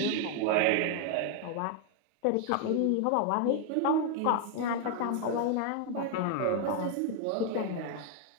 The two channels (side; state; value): both; different; correlation 0.00